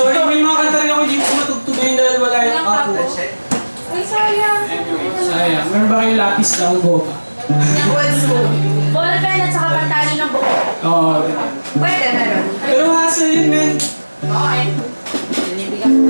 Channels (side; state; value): both; inverted; correlation -1.00